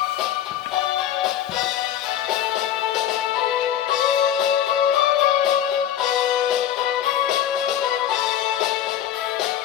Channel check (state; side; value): quieter; right; 10.8 dB